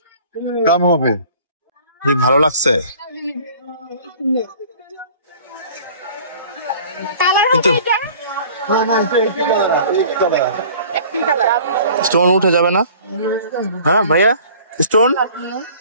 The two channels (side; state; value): both; inverted; correlation -0.48